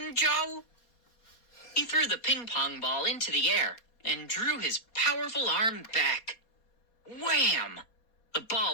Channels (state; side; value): late; right; 4.2 ms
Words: Joe? He threw the ping pong ball into the air and drew his powerful arm back. Wham! The